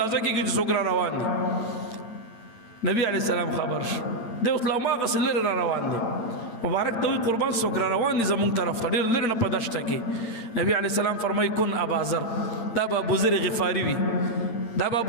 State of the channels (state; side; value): late; right; 8.8 ms